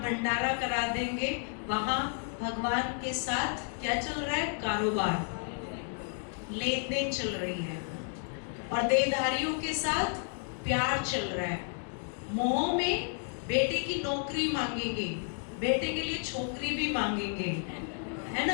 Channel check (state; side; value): silent; right; 57 dB below the other